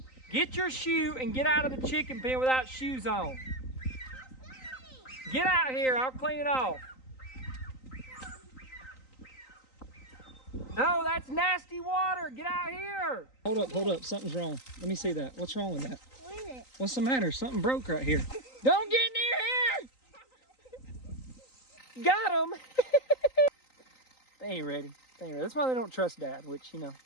Get your shoe and get out of the chicken pen without shoes on. Get out here, I'll clean it off. No, that's nasty water. Get out here. Hold up. Something's wrong. Let me see that. What's wrong with that? What is it? What's the matter? Something broke right here. Don't get near here. Got him. They ain't ready. That's why they don't trust Dad, which, you know,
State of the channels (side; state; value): right; late; 3.9 ms